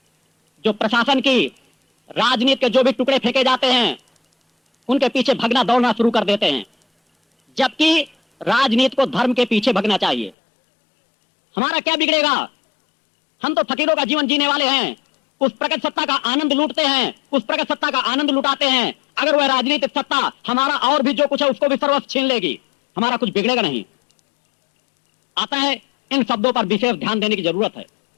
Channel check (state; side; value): drops out; right; at 10.4 s